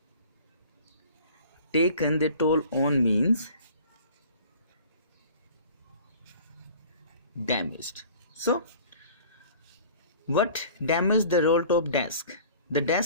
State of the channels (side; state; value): both; inverted; correlation -0.46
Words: Taken the toll on means damaged. So what damaged the roll top desk? The